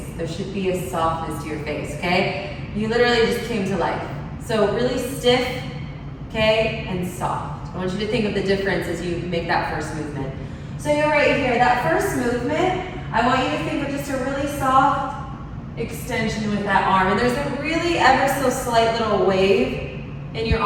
There should be a softness to your face, okay? You literally just came to life. So really stiff, okay, and soft. I want you to think of the difference as you make that first movement. So you're right here, that first movement, I want you to think of just a really soft extension with that arm. And there's a really ever so slight little wave in your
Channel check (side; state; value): both; identical; correlation 1.00